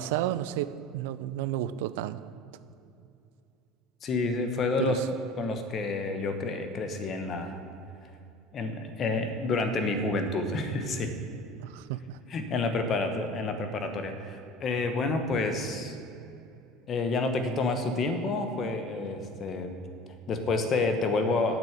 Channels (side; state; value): both; normal; correlation 0.41